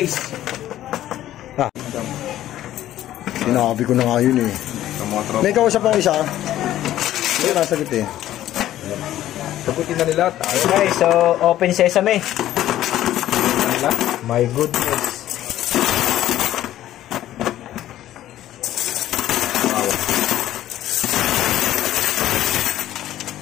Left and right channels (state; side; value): quieter; right; 13.2 dB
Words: Sinabi ko na nga yun eh. May kausap ako isa. Hindi nasagot eh. Sagutin na nila. Okay, so open sesame. My goodness. Wow.